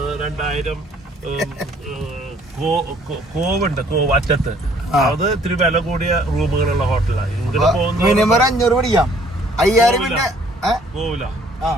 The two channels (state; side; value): normal; both; correlation 0.60